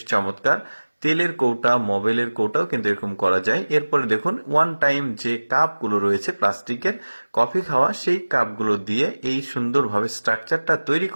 চমৎকার। তেলের কৌটা, মোবাইলের কৌটাও কিন্তু এরকম করা যায়। এরপরে দেখুন ওয়ান টাইম যে কাপগুলো রয়েছে প্লাস্টিকের কফি খাওয়া, সেই কাপগুলো দিয়ে এই সুন্দরভাবে স্ট্রাকচারটা তৈরি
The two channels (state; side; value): inverted; both; correlation -1.00